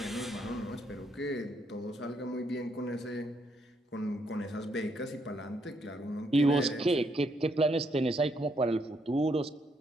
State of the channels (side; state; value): both; normal; correlation 0.74